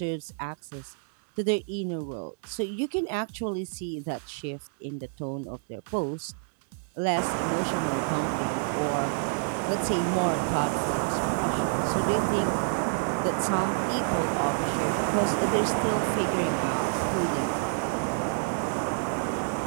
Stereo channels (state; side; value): silent; left; 59 dB below the other